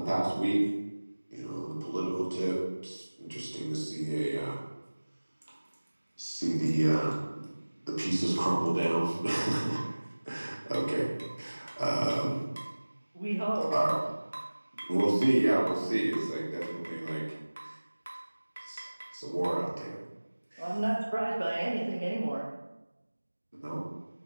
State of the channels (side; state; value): both; inverted; correlation -1.00